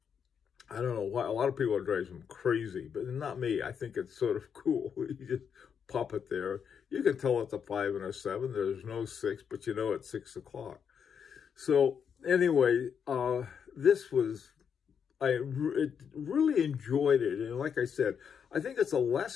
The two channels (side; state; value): right; quieter; 7.3 dB